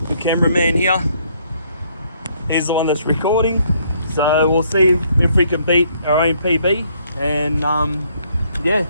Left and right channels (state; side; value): inverted; both; correlation -0.68